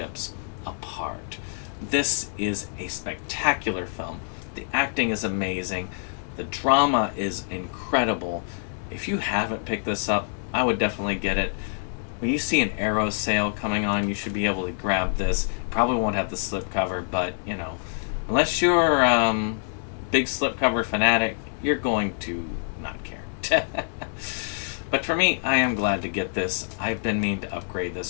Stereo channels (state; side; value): silent; right; digital silence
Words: apart. This is a spectacular film. The acting is amazing. The drama is incredible. If you haven't picked this up, I would definitely get it. When you see an Arrow sale coming on, you should be able to grab this. Probably won't have the slipcover, but, you know, unless you're big slipcover fanatic, you're going to not care. But for me, I am glad to get this. I've been meaning to upgrade